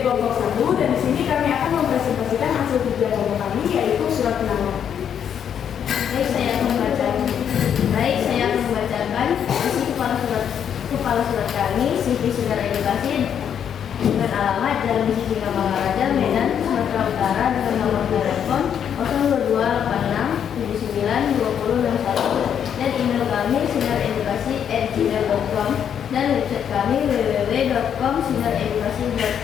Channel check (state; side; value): quieter; right; 8.6 dB